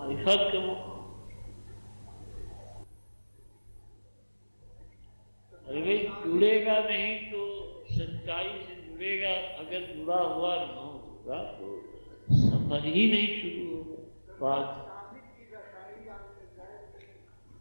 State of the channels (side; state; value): both; inverted; correlation -1.00